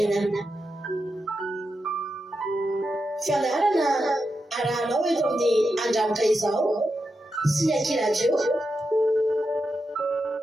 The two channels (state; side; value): normal; both; correlation 0.87